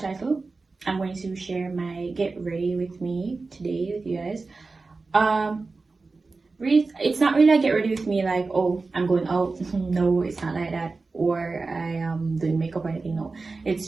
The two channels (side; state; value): left; quieter; 3.9 dB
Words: title, I'm going to share my get ready with me today with you guys. It's not really a get ready with me like, oh, I'm going out. No, it's not like that, or I am doing makeup or anything. No,